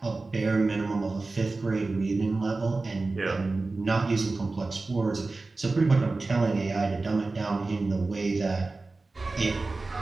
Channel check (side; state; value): left; quieter; 3.5 dB